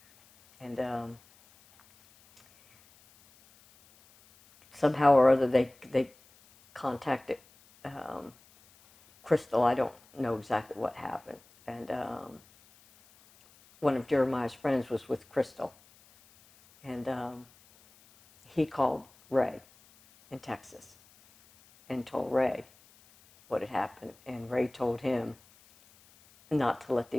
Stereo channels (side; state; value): left; noise; hiss, 28 dB below the sound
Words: And somehow or other they contacted Crystal. I don't know exactly what happened. And one of Jeremiah's friends was with Crystal. And he called Ray in Texas and told Ray what had happened. And Ray told him not to let